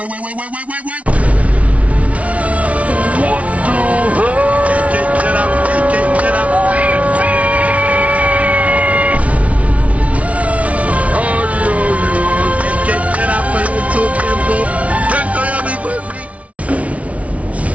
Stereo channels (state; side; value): late; left; 0.065 ms